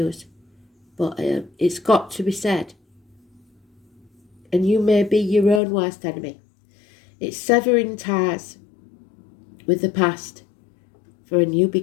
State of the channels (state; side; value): drops out; right; at 5.6 s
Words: But it's got to be said. And you may be your own worst enemy. It's severing ties with the past for a new